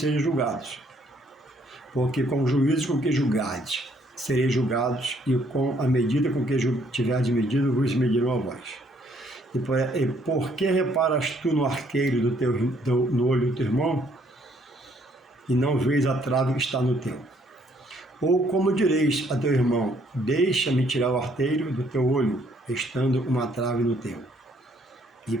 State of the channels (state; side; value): normal; both; correlation 0.66